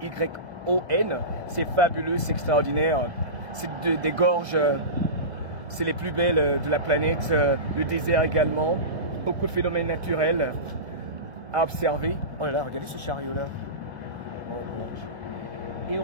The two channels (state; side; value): late; left; 1.8 ms